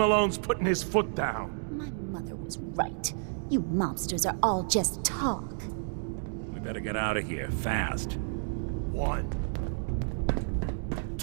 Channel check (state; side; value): silent; left; digital silence